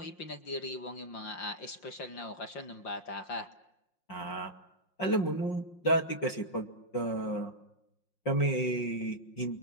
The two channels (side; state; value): right; late; 5.6 ms